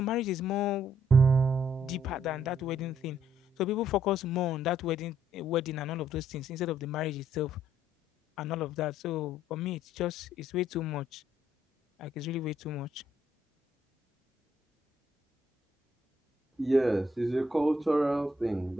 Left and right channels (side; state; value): both; normal; correlation 0.69